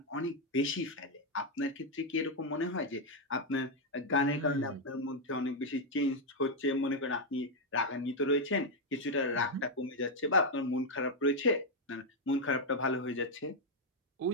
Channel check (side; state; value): both; normal; correlation 0.01